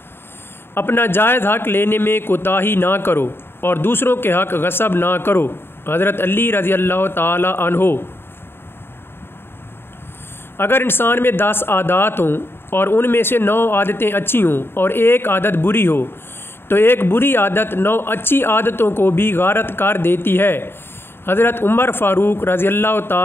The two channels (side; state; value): right; late; 0.11 ms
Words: अपना जायज़ हक़ लेने में कोताही ना करो और दूसरों के हक़ गसब ना करो। हज़रत अली रज़ी अल्लाह ताला अन्हो। अगर इंसान में 10 आदत हों और उनमें से 9 आदतें अच्छी हों और एक आदत बुरी हो तो एक बुरी आदत 9 अच्छी आदतों को भी गारत कर देती है। हज़रत उमर फ़ारूक रज़ी अल्लाह